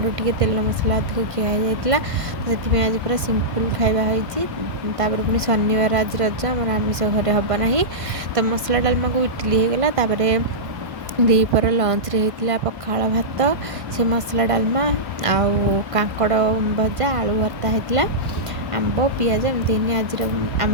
टे तेल मसला अधिक खिया तो से आज पूरा सिंपल खाଇବା होपर पुणी शनिवार आज रज आम आमिष घरे हम ना। तो मसला डालमा को इडली होगला दीपर लंच रे होता पखाड़ भात से मसला डालमा आउ कांकड़ भजा आलू भर्ता होता आंब पियाज एमती आज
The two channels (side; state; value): left; late; 1.5 ms